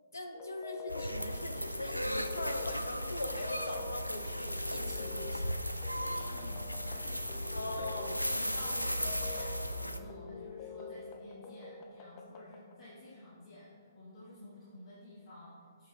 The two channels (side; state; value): both; inverted; correlation -0.85